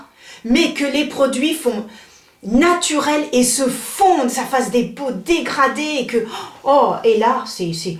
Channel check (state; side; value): identical; both; correlation 1.00